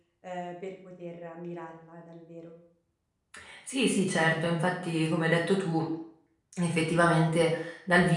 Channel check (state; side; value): identical; both; correlation 1.00